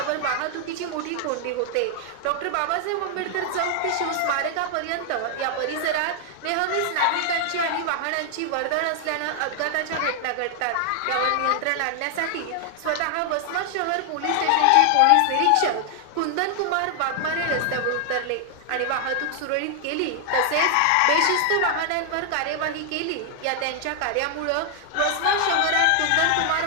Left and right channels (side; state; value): both; different; correlation 0.00